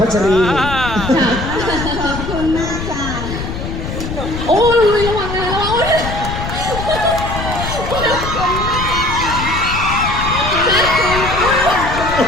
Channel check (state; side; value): noise; left; rumble, 6 dB below the sound